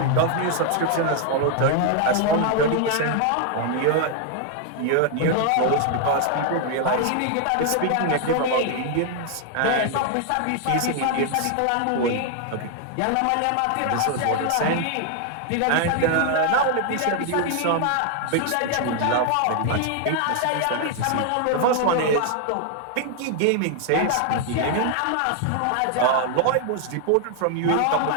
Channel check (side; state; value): both; different; correlation 0.00